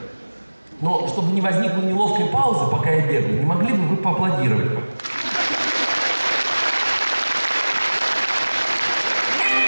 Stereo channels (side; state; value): both; inverted; correlation -1.00